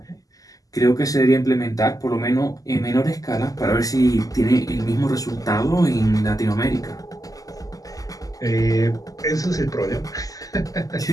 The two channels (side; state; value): right; late; 0.17 ms